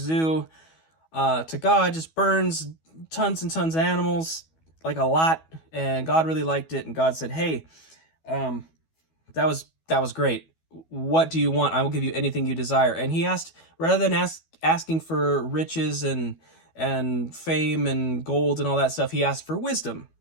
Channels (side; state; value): right; late; 12 ms